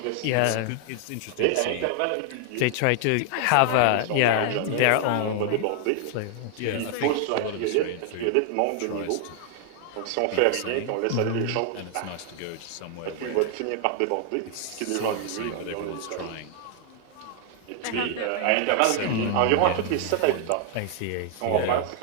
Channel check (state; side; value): different; both; correlation 0.00